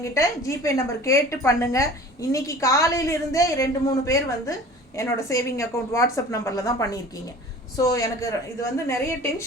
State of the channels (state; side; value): normal; both; correlation 0.43